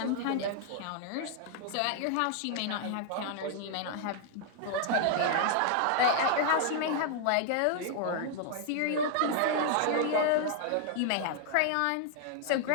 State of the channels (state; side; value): different; both; correlation 0.00